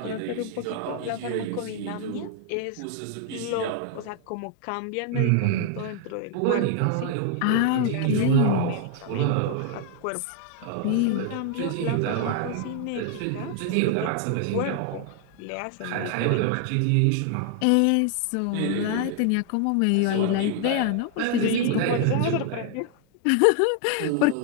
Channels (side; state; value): both; different; correlation 0.00